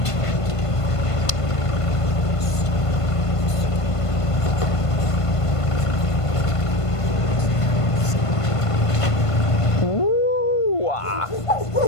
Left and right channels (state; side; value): late; right; 1.5 ms